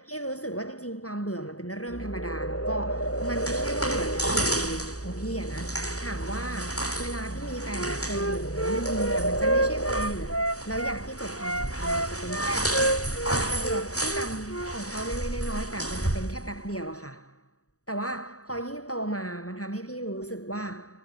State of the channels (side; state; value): right; late; 0.66 ms